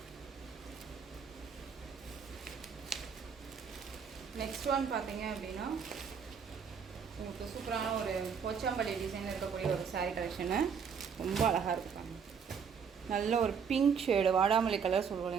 நெக்ஸ்ட் ஒன் பார்த்தீங்க அப்படின்னா உங்களுக்கு சூப்பரான ஒரு போச்சாம்பள்ளி டிசைன் இருக்கக்கூடிய ஒரு சாரீ கலெக்ஷனு. ரொம்ப அழகாக இருப்பாங்க. நல்ல ஒரு பிங்க் ஷேடு, வாடாமல்லி கலர் சொல்லுவோம்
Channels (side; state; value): left; quieter; 6.6 dB